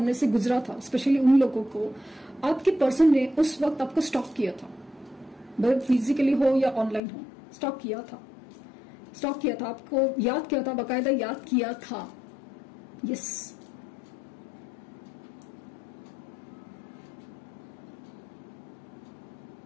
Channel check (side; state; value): right; drops out; at 7.0 s